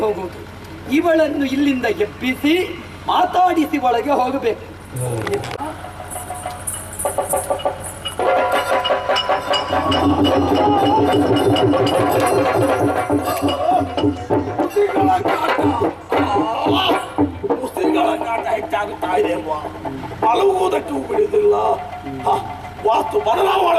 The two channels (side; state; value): both; identical; correlation 1.00